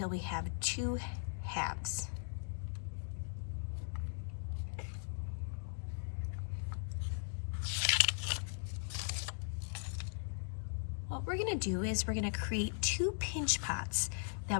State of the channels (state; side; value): silent; right; digital silence